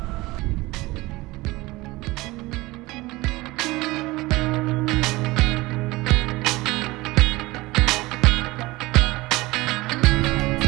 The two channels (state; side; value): quieter; left; 20.8 dB